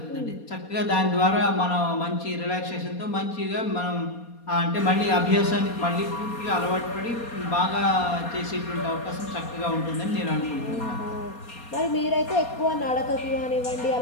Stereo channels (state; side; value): late; right; 4.2 ms